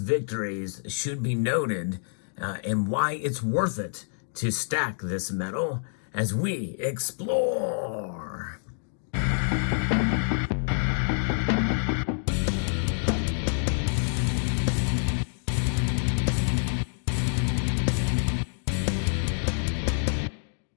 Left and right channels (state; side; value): silent; right; digital silence